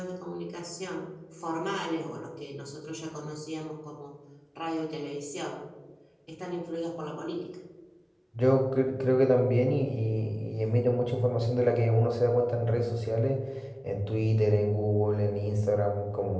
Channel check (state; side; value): identical; both; correlation 1.00